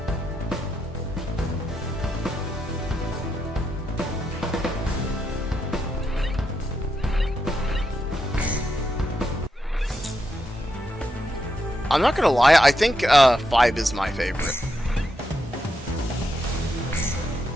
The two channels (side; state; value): both; normal; correlation 0.83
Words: I'm not gonna lie, I think 5 is my favorite.